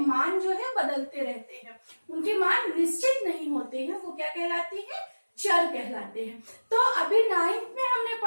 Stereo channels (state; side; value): inverted; both; correlation -1.00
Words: जो है बदलते रहते हैं, उनके मान निश्चित नहीं होते हैं, वो क्या कहलाती है? चर कहलाते हैं। तो अभी 9th में हमने